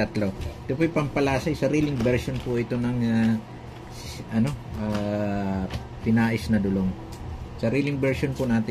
Ito po yung pampalasay. Sariling version po ito ng pinais na dulong. Sariling version po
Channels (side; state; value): both; identical; correlation 1.00